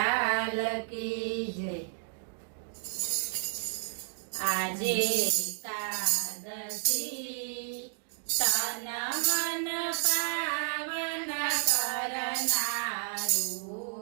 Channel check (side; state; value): left; silent; digital silence